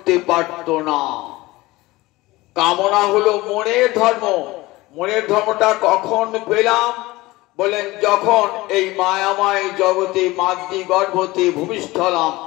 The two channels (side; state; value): right; quieter; 20.0 dB